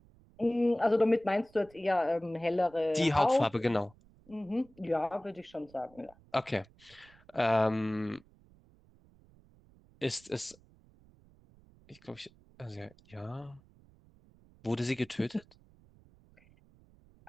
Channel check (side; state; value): right; noise; rumble, 28 dB below the sound